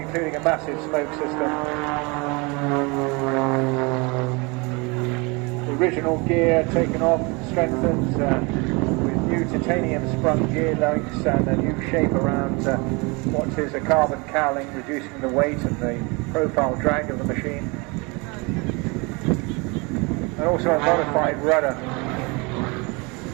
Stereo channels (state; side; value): quieter; left; 28.2 dB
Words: a massive smoke system. The original gear taken off, strengthened with new titanium sprung gear links and a new shape around what is a carbon cowling, reducing the weight and the profile drag of the machine. And also a modified rudder,